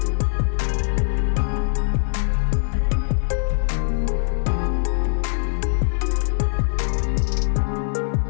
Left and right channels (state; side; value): silent; right; 59 dB below the other